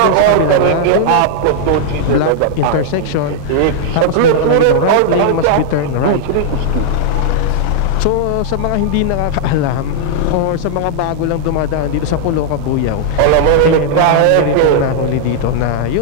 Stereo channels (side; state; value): both; different; correlation -0.01